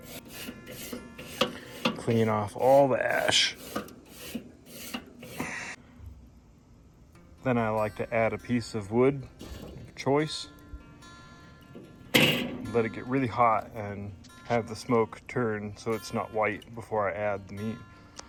clean off all the ash. Then I like to add a piece of wood of choice, let it get really hot and have the smoke turn so it's not white before I add the meat.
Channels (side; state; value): both; identical; correlation 1.00